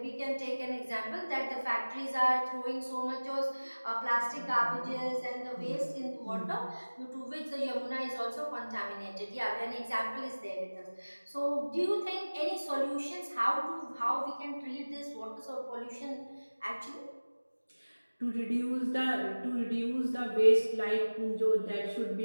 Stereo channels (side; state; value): both; inverted; correlation -1.00